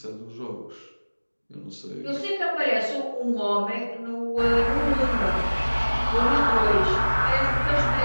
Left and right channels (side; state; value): both; inverted; correlation -1.00